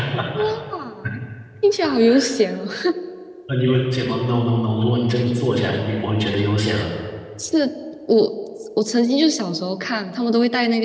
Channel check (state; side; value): identical; both; correlation 1.00